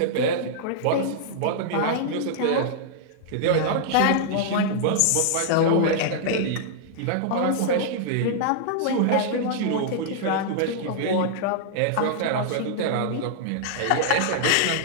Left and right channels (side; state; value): both; different; correlation -0.01